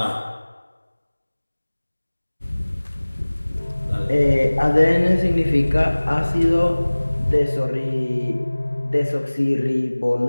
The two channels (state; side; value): inverted; both; correlation -1.00